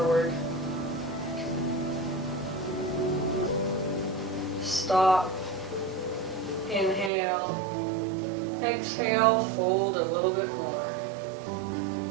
Stop. Inhale. Exhale, fold a little bit more.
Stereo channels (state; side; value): drops out; left; at 7.1 s